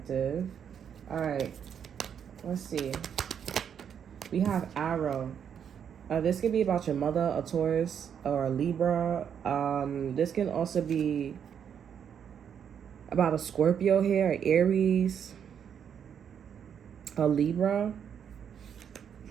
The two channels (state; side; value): quieter; left; 8.1 dB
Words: All right, let's see. We have Arrow. This could be about your mother, a Taurus, or a Libra. This can also be about a Scorpio here, an Aries, a Libra.